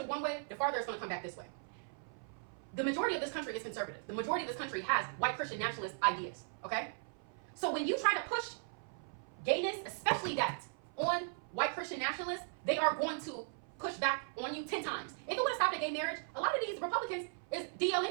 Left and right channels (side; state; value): left; silent; 53 dB below the other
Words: one way, the farther it's going to come back this way. The majority of this country is conservative. The majority of this country has white Christian nationalist ideas. Okay? So when you try to push gayness, especially that, on white Christian nationalists, they are going to push back on you 10 times. If it would have stopped at gay marriage, a lot of these Republicans is DL